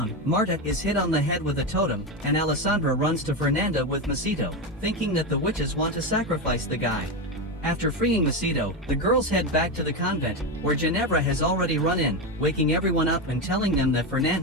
Marta is hit on the head with a totem, and Alessandra runs to Fernanda with Macedo, thinking that the witches want to sacrifice the guy. After freeing Macedo, the girls head back to the convent, where Ginevra has already run in, waking everyone up and telling them that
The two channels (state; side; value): normal; both; correlation 0.14